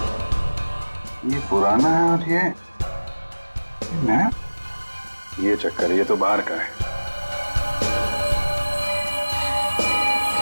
ये पुराना है और ये नया। ये चक्कर, ये तो बाहर का है।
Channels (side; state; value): both; inverted; correlation -1.00